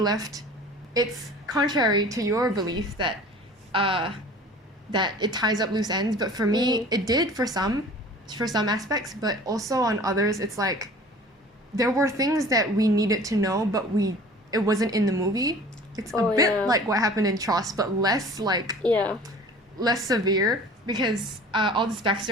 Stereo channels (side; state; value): both; normal; correlation 0.45